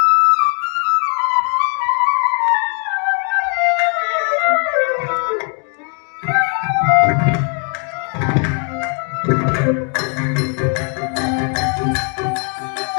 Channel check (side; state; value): right; quieter; 36.9 dB